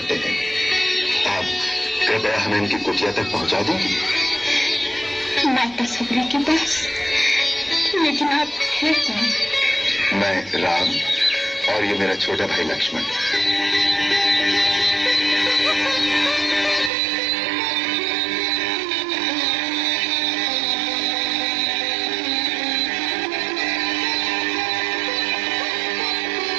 हैं। आप कृपया हमें उनकी कुटिया तक पहुंचा देंगे। माता शबरी के पास? लेकिन आप हैं कौन? मैं राम और ये मेरा छोटा भाई लक्ष्मण।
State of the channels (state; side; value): drops out; left; at 16.9 s